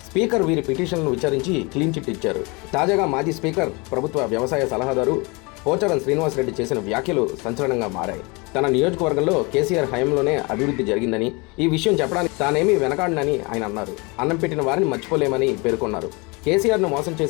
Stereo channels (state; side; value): quieter; right; 27.9 dB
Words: స్పీకర్ వీరి పిటిషన్లను విచారించి క్లీన్ చిట్ ఇచ్చారు. తాజాగా మాజీ స్పీకర్, ప్రభుత్వ వ్యవసాయ సలహాదారు పోచారం శ్రీనివాసరెడ్డి చేసిన వ్యాఖ్యలు సంచలనంగా మారాయి. తన నియోజకవర్గంలో కేసీఆర్ హయాంలోనే అభివృద్ధి జరిగిందని, ఈ విషయం చెప్పడానికి తానేమీ వెనకాడనని ఆయన అన్నారు. అన్నం పెట్టిన వారిని మర్చిపోలేమని పేర్కొన్నారు. కేసీఆర్ను మోసం